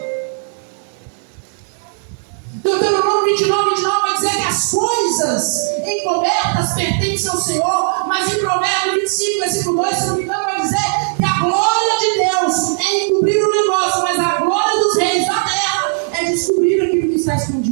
Deuteronômio 29 vai dizer que as coisas encobertas pertencem ao Senhor, mas em Provérbios 25, versículo 2, se não me engano, vai dizer que a glória de Deus é encobrir o negócio, mas a glória dos reis da terra é de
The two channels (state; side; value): silent; left; digital silence